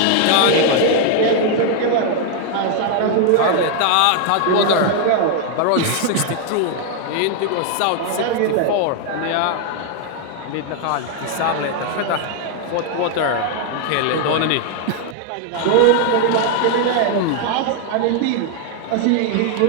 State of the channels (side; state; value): both; different; correlation 0.00